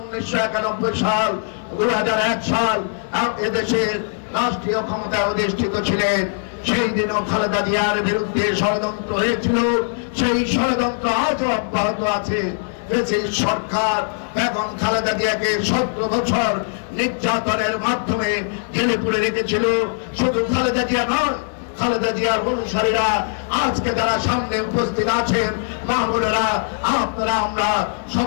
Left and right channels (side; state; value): right; silent; 65 dB below the other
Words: সাল 2001 সাল এদেশের রাষ্ট্রীয় ক্ষমতায় অধিষ্ঠিত ছিলেন। সেই দিনও খালেদা জিয়ার বিরুদ্ধে ষড়যন্ত্র হয়েছিল, সেই ষড়যন্ত্র আজও অব্যাহত আছে। সরকার এবং খালেদা জিয়াকে 17 বছর নির্যাতনের মাধ্যমে জেলে পুরে রেখেছিল। শুধু খালেদা জিয়া নয়, খালেদা জিয়ার অনুসারীরা আজকে যারা সামনে উপস্থিত আছেন, মা বোনেরা, আপনারা আমরা